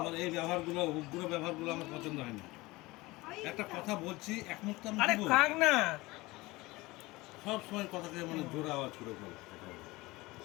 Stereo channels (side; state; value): right; quieter; 21.2 dB